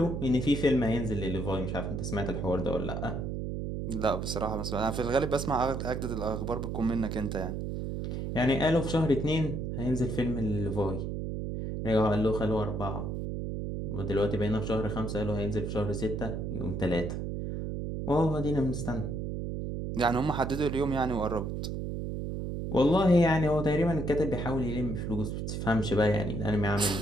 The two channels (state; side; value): noise; right; hum, 3 dB below the sound